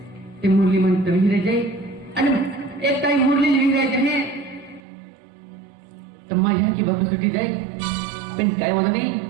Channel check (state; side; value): drops out; left; at 4.8 s